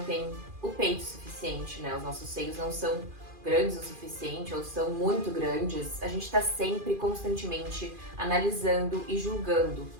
tem o peito suficiente, né? Os nossos seios não são grandes o suficiente ou são muito grandes. A gente tá sempre, constantemente analisando e julgando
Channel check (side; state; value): left; late; 2.4 ms